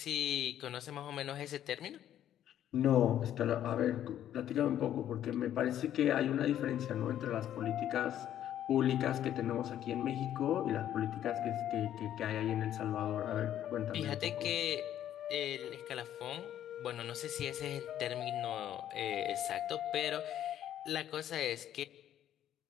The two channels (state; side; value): quieter; right; 11.2 dB